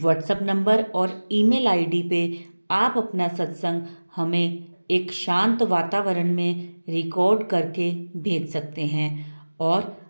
नंबर और ईमेल आईडी पे आप अपना सत्संग हमें एक शांत वातावरण में रिकॉर्ड करके भेज सकते हैं। और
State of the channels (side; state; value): both; inverted; correlation -1.00